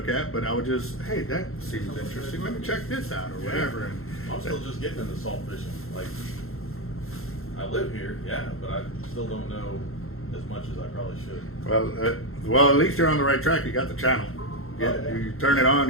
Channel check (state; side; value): late; right; 0.62 ms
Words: at, but I would just, hey, that seems interesting. Let me check this out or whatever. And I'm still just getting into salt fishing. Like, I live here, yeah, but I still don't know as much as I probably should. Well, at least you're on the right track. You got the channel. You turn it on,